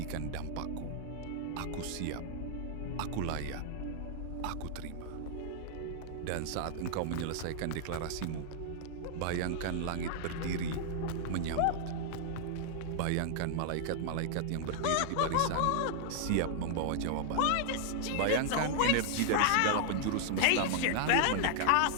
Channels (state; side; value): different; both; correlation -0.01